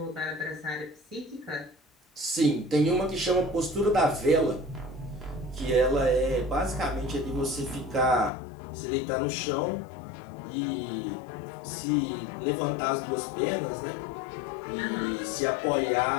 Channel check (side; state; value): right; drops out; at 8.3 s